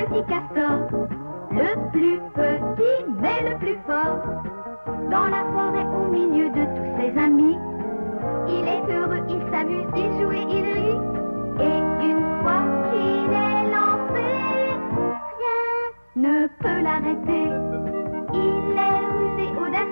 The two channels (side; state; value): both; inverted; correlation -1.00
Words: castor, le plus petit mais le plus fort. Dans la forêt au milieu de tous ses amis, il est heureux, il s'amuse, il joue et il rit. Et une fois qu'il est lancé, rien ne peut l'arrêter. Il est rusé,